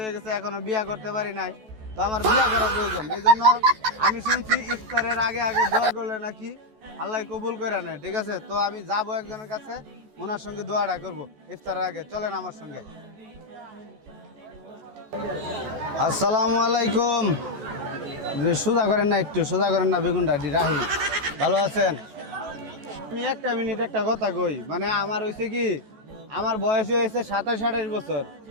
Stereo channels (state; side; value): late; left; 14 ms